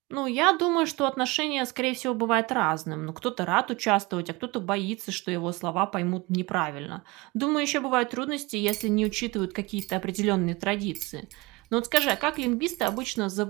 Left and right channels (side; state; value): left; quieter; 23.6 dB